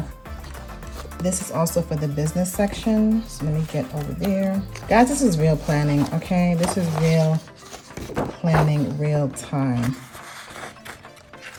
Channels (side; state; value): both; identical; correlation 1.00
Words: this is also for the business section. So let me get over there. Guys, this is real planning, okay? This is real planning, real time.